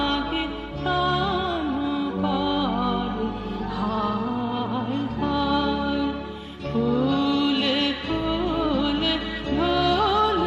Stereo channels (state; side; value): identical; both; correlation 1.00